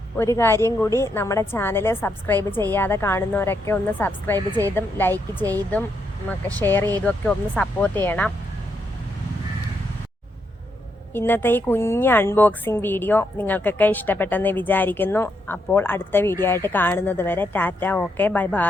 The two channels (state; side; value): normal; both; correlation 0.79